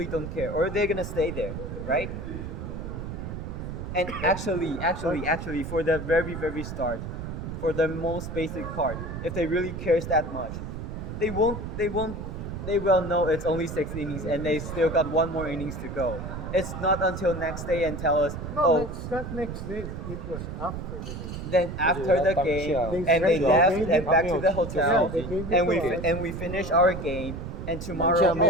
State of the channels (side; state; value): right; noise; rumble, 7 dB below the sound